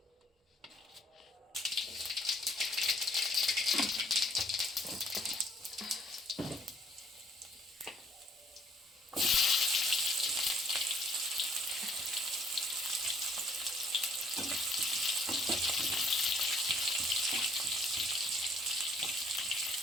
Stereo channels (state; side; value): normal; both; correlation 0.61